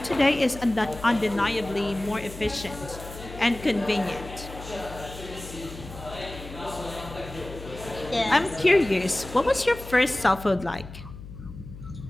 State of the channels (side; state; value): left; noise; hum, 14 dB below the sound